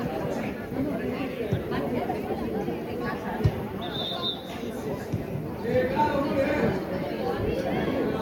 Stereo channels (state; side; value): identical; both; correlation 1.00